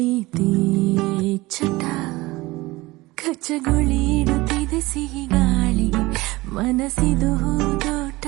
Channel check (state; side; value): quieter; left; 20.6 dB